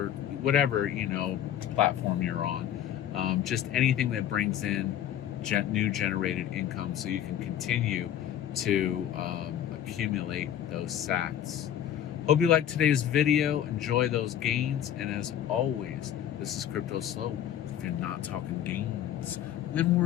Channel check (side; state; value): right; quieter; 10.6 dB